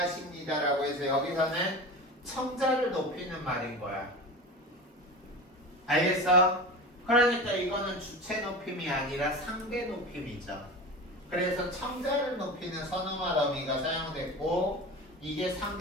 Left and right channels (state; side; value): normal; both; correlation 0.30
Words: 해서 여기서는 청자를 높이는 말인 거야. 알겠어? 그러니까 이거는 주체 높임이 아니라 상대 높임이죠. 그래서 청자를 높이는 선어말 어미가 사용됐고 이게